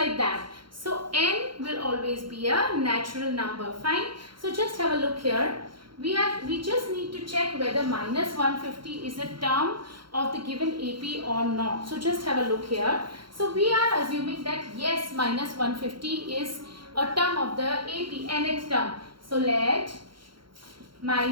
that. So n will always be a natural number. Fine. So just have a look here. We just need to check whether minus 150 is a term of the given AP or not. So just have a look here. So we are assuming that yes, minus 150 is a term of the AP, nth term. So let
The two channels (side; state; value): left; late; 0.73 ms